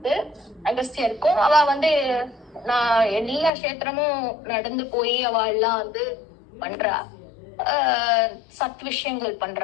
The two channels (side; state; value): right; drops out; at 3.5 s